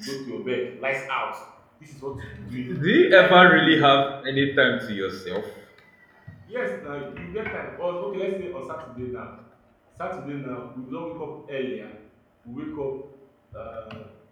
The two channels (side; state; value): both; identical; correlation 1.00